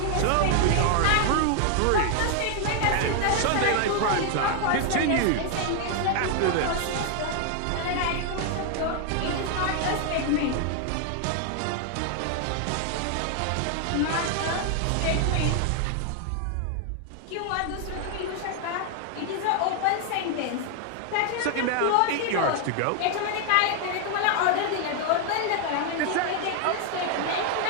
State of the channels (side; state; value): both; different; correlation 0.00